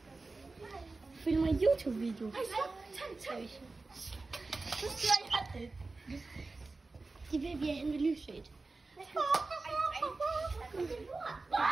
Filmer en YouTube-video. Ej, tænd. Så skal jeg det. De vil blive hen ved lyset.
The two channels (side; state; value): left; quieter; 3.6 dB